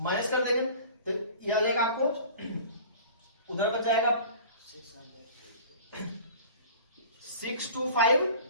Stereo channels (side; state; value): both; inverted; correlation -0.42